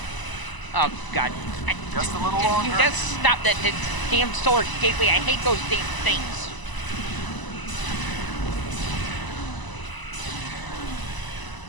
Oh god. Just a little Can longer. you just stop that damn solar gateway? I hate those damn things.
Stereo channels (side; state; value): right; late; 1.0 ms